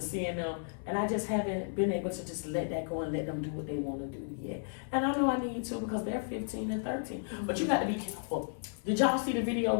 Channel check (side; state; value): right; silent; 55 dB below the other